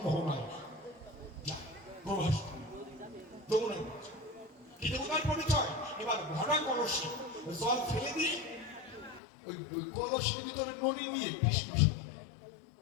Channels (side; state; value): right; drops out; at 9.2 s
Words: মোহনায় প্রভাস যমুনায় কি দেবতার পরিচয়? এবার ভরা কলসি জল ফেলে দিয়ে ওই কলসির ভিতরে ননি নিয়ে কৃষ্ণ